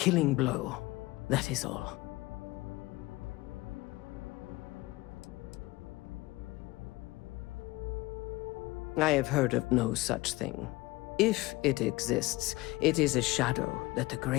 blow. That is all. I have heard of no such thing. If it exists, it is a shadow that the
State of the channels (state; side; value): quieter; right; 20.6 dB